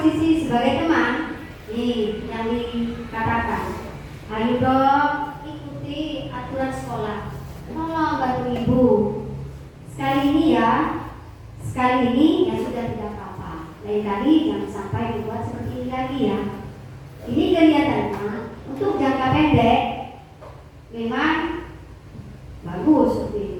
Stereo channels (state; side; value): identical; both; correlation 1.00